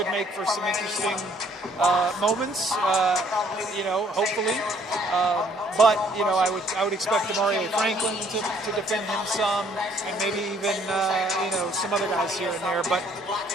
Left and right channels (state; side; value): normal; both; correlation 0.63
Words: make for some interesting moments, you know, hopefully. But, you know, I would expect Demario Franklin to defend him some, and maybe even, you know, some other guys here and there. But